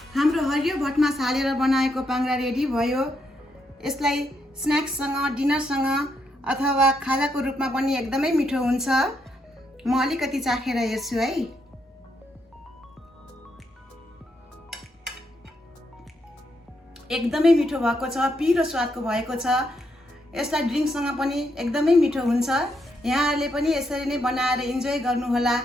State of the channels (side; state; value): both; normal; correlation 0.79